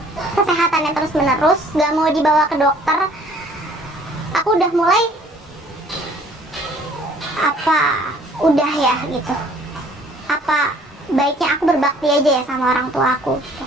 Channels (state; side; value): normal; both; correlation 0.56